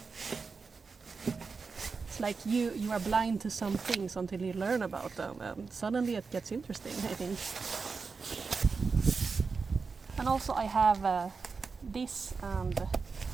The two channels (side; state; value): left; quieter; 4.8 dB